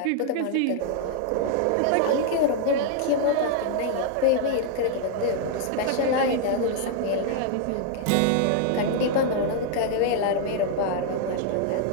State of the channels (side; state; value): both; different; correlation -0.01